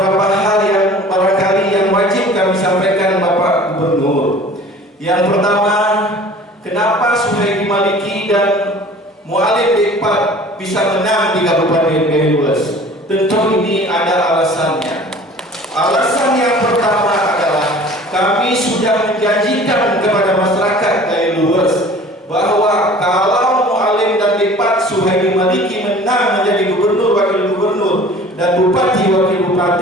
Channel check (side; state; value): both; normal; correlation 0.46